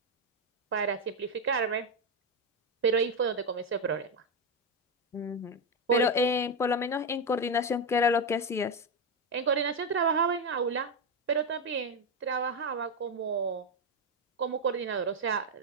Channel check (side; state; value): both; normal; correlation 0.08